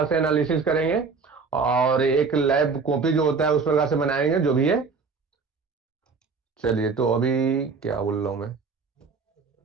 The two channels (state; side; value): quieter; left; 4.8 dB